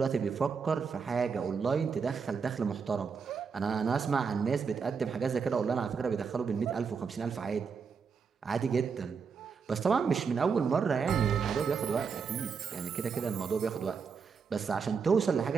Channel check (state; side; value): quieter; left; 5.8 dB